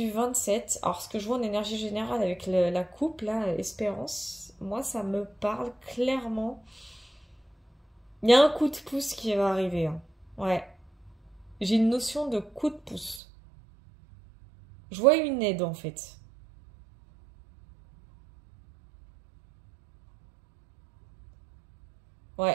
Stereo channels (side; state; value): left; drops out; at 13.2 s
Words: 27, alors ce que je vois en énergie générale avec la coupe, là, Espérance, moi ça me parle clairement. Il y a un coup de pouce qui va arriver. Hein. Ouais. J'ai une notion de coup de pouce. Je vois une aide en fait.